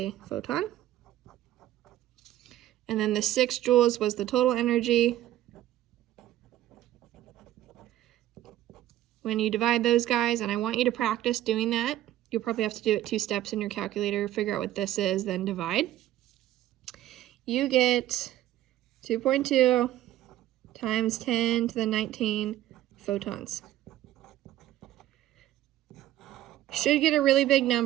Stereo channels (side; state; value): left; quieter; 13.6 dB